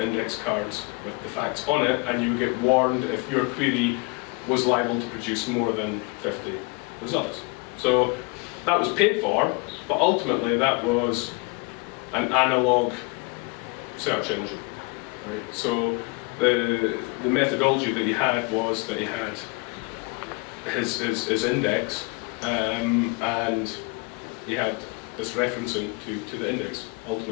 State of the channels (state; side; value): quieter; right; 28.6 dB